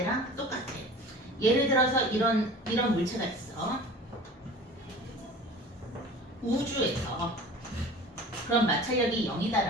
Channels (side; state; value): both; normal; correlation 0.41